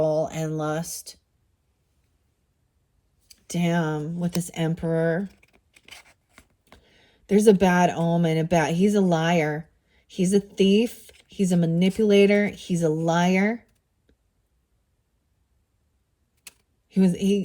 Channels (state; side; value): identical; both; correlation 1.00